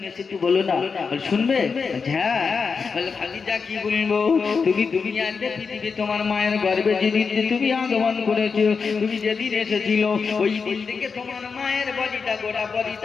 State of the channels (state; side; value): quieter; right; 5.3 dB